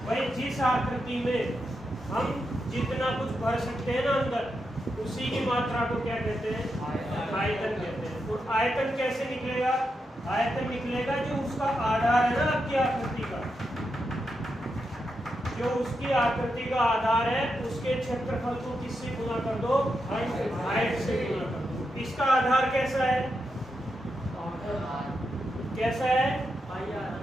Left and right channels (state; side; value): normal; both; correlation 0.85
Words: भाई जिस आकृति में हम जितना कुछ भर सकते हैं ना अंदर, उसी की मात्रा को क्या कहते हैं आयतन कहते हैं। और आयतन कैसे निकलेगा, आयतन निकलेगा जो उसका आधार है ना आपकी आकृति का, जो उसकी आकृति का आधार है उसके क्षेत्रफल को किससे गुना कर दो हाइट से गुना कर दो। इसका आधार कैसा है, कैसा है?